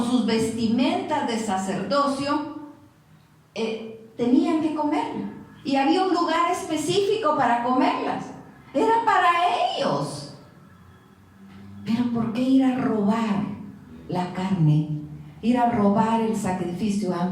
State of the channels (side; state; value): both; identical; correlation 1.00